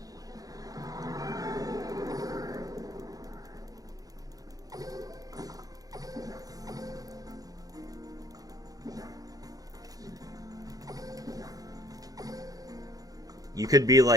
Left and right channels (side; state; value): left; late; 0.17 ms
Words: You could be